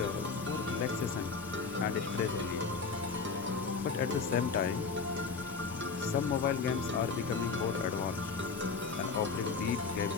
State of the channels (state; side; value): quieter; right; 5.0 dB